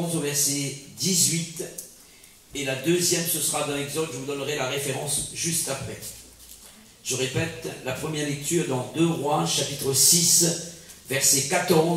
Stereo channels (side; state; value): both; identical; correlation 1.00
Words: au verset 18. Et la deuxième, ce sera dans Exode, je vous donnerai la référence juste après. Je répète, la première lecture dans 2 Rois, chapitre 6, verset